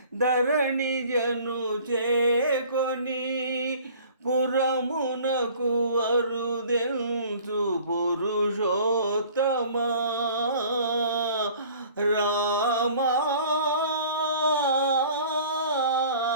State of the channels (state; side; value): inverted; both; correlation -0.49